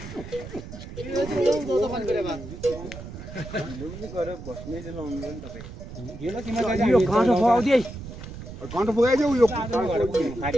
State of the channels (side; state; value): right; noise; rumble, 12 dB below the sound